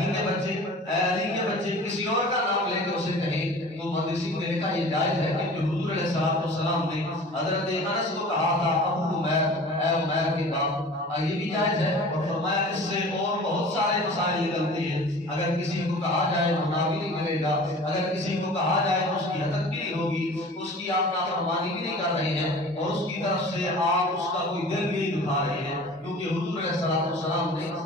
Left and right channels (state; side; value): normal; both; correlation 0.42